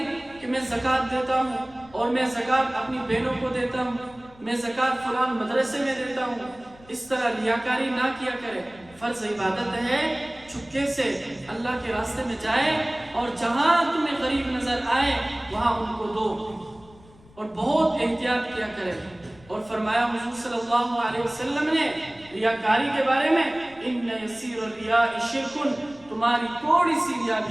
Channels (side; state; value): left; noise; rumble, 25 dB below the sound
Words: کہ میں زکوٰۃ دیتا ہوں اور میں زکوٰۃ اپنی بہنوں کو دیتا ہوں، میں زکوٰۃ فلان مدرسے میں دیتا ہوں، اس طرح ریاکاری نہ کیا کرے۔ فرض عبادت ہے چپکے سے اللہ کے راستے میں جائے اور جہاں تمہیں غریب نظر آئے وہاں ان کو دو، اور بہت احتیاط کیا کرے۔ اور فرمایا حضور صلی اللہ علیہ وسلم نے ریاکاری کے بارے میں، ان یسیر الریاء شرک، تمہاری تھوڑی سی ریا